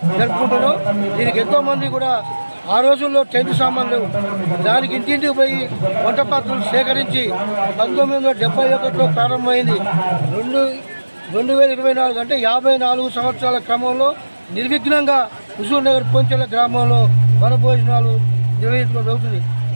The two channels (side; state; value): both; inverted; correlation -1.00